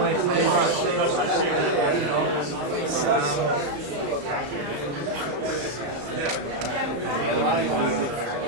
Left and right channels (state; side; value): late; left; 35 ms